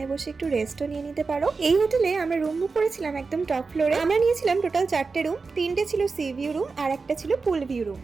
বসে একটু রেস্টও নিয়ে নিতে পারো। এই হোটেলে আমরা রুম বুক করেছিলাম একদম টপ ফ্লোরে। আমরা নিয়েছিলাম টোটাল 4টে রুম, 3টে ছিল সি ভিউ রুম আর একটা ছিল পুল ভিউ রুম।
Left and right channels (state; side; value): quieter; left; 4.4 dB